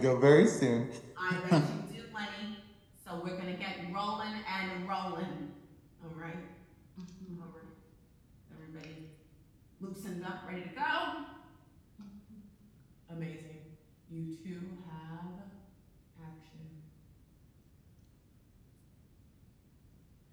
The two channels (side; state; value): both; identical; correlation 1.00